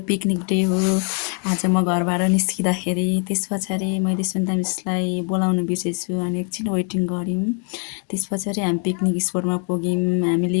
पिकनिक डे हो। आज म घरबाट निस्किँदाखेरि त्यस पछाडि मैले सुन्दा मिसलाई बोलाउनु बिर्सेछु अनि एकछिन वेटिङ गऱ्यौँ। त्यस पछाडि हामी पिकनिक स्पटमा पुग्यौँ। हामी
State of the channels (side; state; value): right; quieter; 39.1 dB